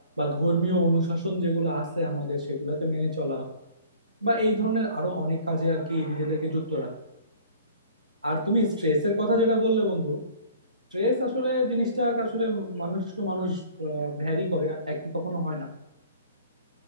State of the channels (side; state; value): both; inverted; correlation -0.51